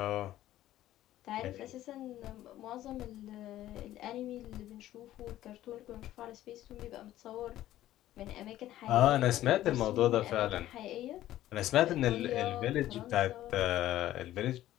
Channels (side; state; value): right; quieter; 13.9 dB